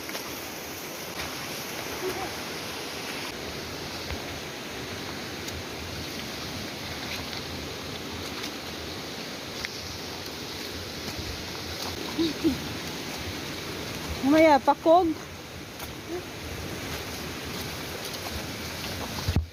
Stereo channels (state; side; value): identical; both; correlation 1.00